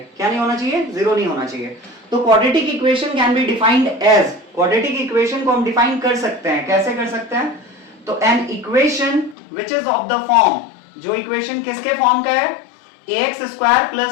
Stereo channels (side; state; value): right; drops out; at 9.3 s